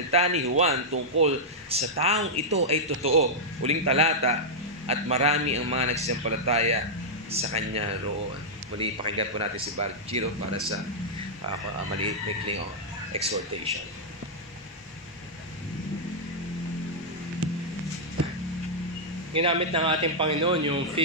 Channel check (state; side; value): normal; both; correlation -0.08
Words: ni Juan tungkol sa taong ito ay totoo." Uling talata, "At marami ang mga nagsisampalataya sa kanya roon." Muli, pakinggan po natin si Bar Giro para sa maliit maikling exhortation. Ginamit ng ating Panginoon yung